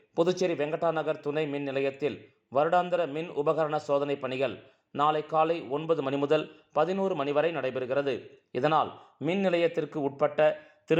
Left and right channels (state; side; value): identical; both; correlation 1.00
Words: புதுச்சேரி வெங்கடா நகர் துணை மின் நிலையத்தில் வருடாந்திர மின் உபகரண சோதனை பணிகள் நாளை காலை 9 மணி முதல் 11 மணி வரை நடைபெறுகிறது. இதனால் மின் நிலையத்திற்கு உட்பட்ட